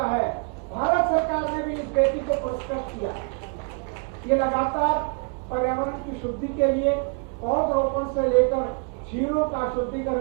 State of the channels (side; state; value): left; quieter; 36.2 dB